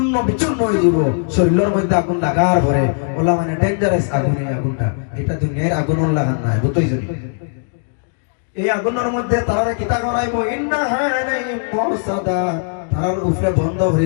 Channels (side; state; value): right; silent; 62 dB below the other